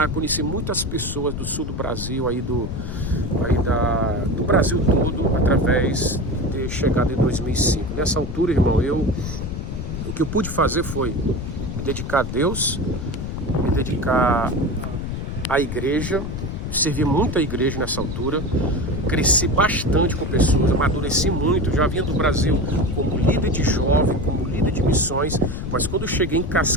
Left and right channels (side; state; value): left; noise; rumble, 5 dB below the sound